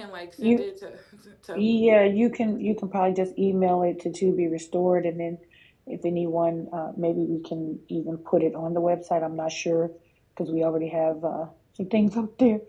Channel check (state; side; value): identical; both; correlation 1.00